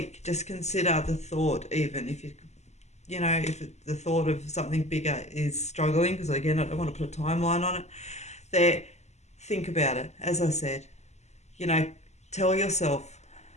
Just consider the thought, even if the thought of something bigger is struggling, because again, I don't want to put a timeline on it. Think about it. As I said, tell yourself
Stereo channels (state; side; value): late; right; 0.33 ms